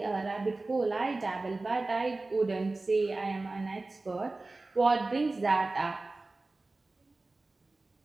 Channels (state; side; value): quieter; left; 3.2 dB